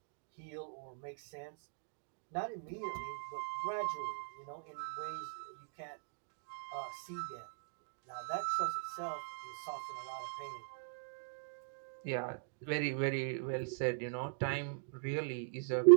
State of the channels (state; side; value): silent; left; digital silence